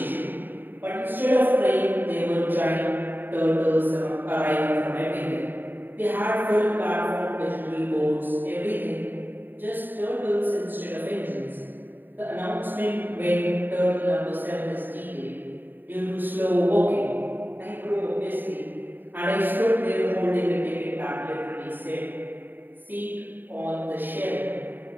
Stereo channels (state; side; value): late; left; 0.091 ms